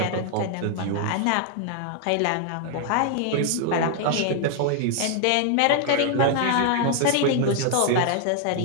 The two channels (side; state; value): both; different; correlation 0.00